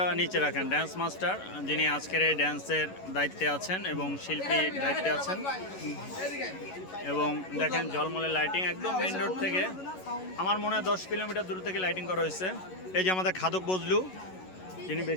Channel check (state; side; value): late; right; 11 ms